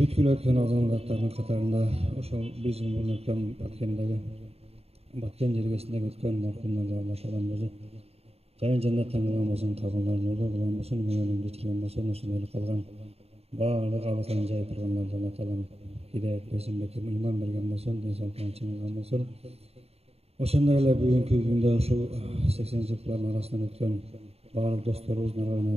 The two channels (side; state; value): left; late; 0.29 ms